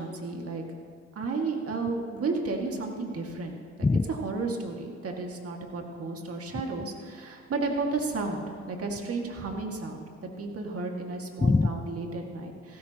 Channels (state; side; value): normal; both; correlation 0.56